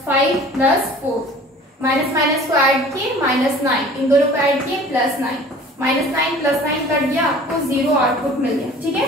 5 प्लस 4, माइनस माइनस को ऐड किए -9, इन दोनों को ऐड किए +9, -9 प्लस 9 कट गया, आपको 0 आउटपुट मिल गया, ठीक है।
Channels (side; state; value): both; normal; correlation 0.46